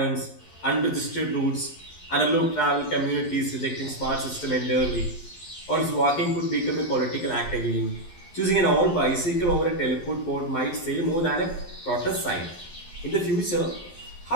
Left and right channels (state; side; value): late; right; 11 ms